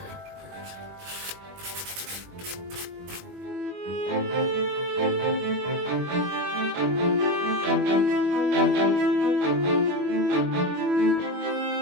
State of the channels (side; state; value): left; late; 21 ms